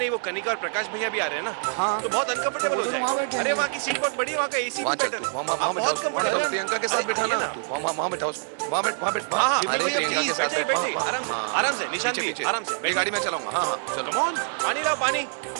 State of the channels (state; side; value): silent; left; 61 dB below the other